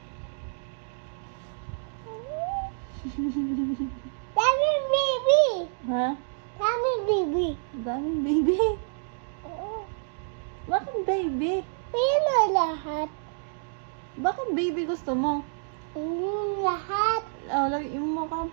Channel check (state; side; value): silent; left; digital silence